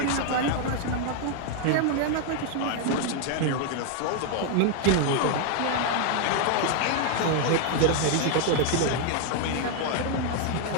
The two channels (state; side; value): different; both; correlation 0.00